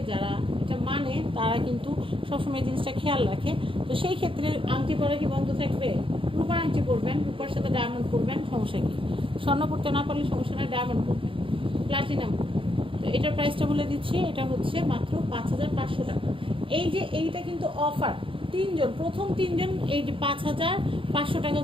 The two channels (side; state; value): left; late; 0.25 ms